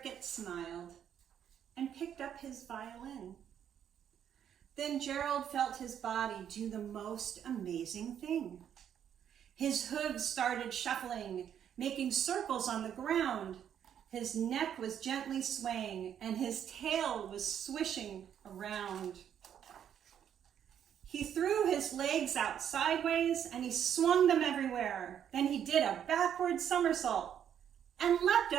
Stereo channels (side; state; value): left; quieter; 9.2 dB